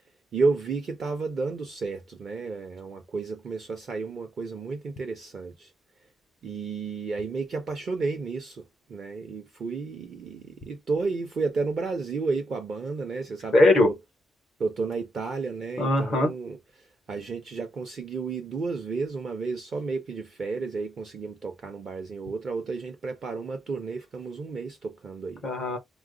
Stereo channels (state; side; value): normal; both; correlation 0.81